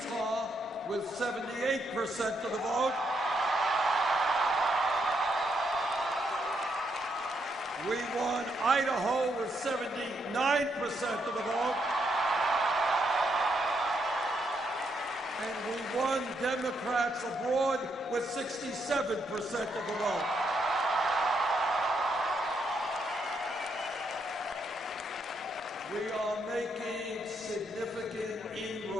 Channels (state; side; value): normal; both; correlation 0.78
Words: with 78% of the vote. We won Idaho with 79% of the vote. And we won Democrats abroad with 67% of the vote. We are making significant